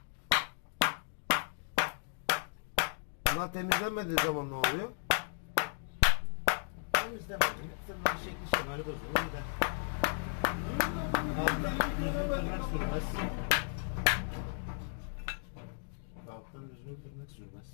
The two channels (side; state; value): right; silent; digital silence